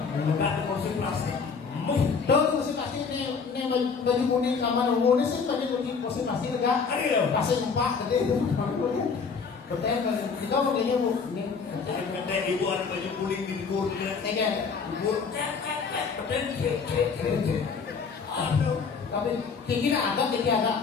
Enggak ada kursi plastik. Dong kursi plastik ini baju kuning kamar umum ini sih baju kuning kursi plastik enggak? Kasih empat tadi itu. Betul kita makanya bu ini. Kata ibu ada baju kuning di luar dia. Ikan. Ibu betul. Aduh. Tapi tinggi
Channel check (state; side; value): quieter; right; 5.4 dB